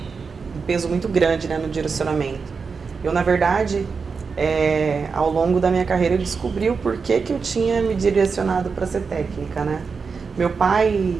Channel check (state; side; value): quieter; left; 5.2 dB